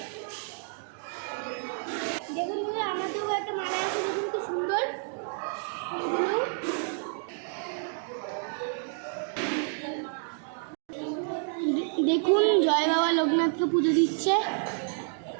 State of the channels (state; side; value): silent; left; 58 dB below the other